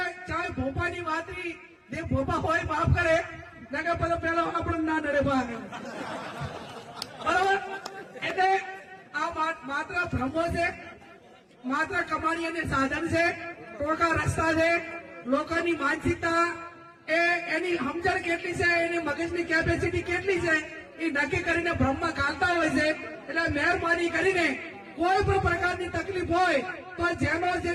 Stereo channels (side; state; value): both; identical; correlation 1.00